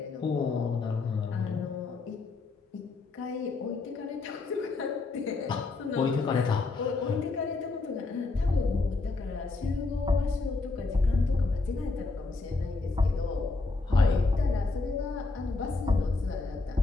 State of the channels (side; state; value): right; quieter; 3.7 dB